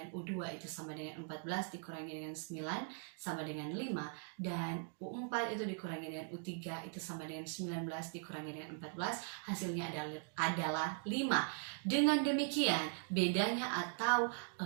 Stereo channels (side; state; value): left; silent; 51 dB below the other